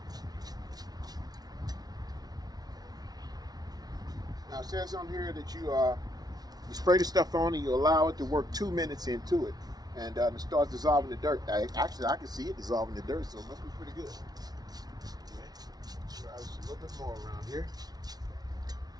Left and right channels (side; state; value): left; late; 0.19 ms